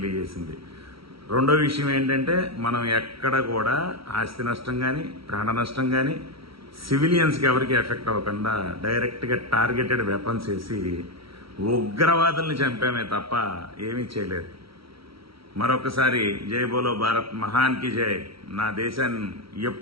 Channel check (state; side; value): late; left; 0.75 ms